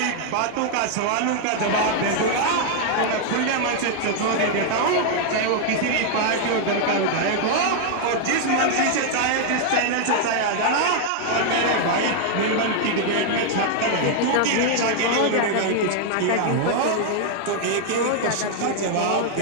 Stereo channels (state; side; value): different; both; correlation 0.00